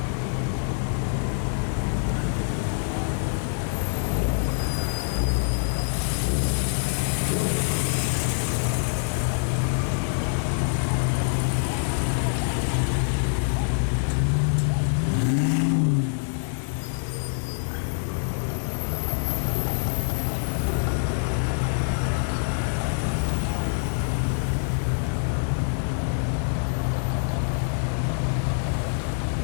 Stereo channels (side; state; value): right; silent; digital silence